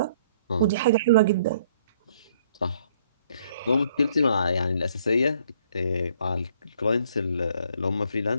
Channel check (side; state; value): both; inverted; correlation -0.64